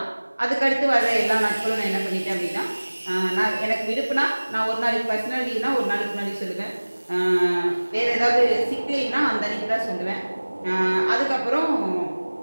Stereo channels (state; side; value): inverted; both; correlation -1.00